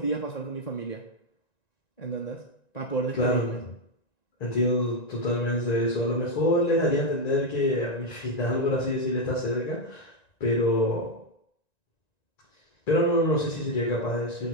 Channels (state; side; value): late; right; 1.9 ms